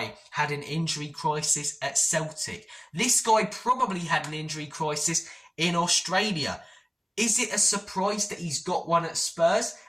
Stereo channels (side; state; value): both; identical; correlation 1.00